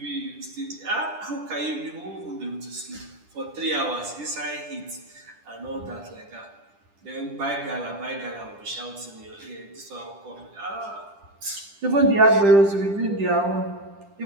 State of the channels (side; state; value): left; late; 10 ms